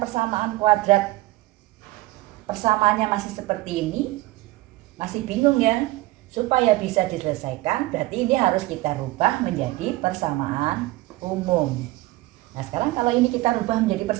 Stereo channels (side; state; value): left; quieter; 18.7 dB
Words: persamaan kuadrat, persamaannya masih seperti ini, masih bingung ya? Supaya bisa diselesaikan, berarti ini harus kita rubah menjadi persamaan umum. Nah sekarang kalau ini kita rubah menjadi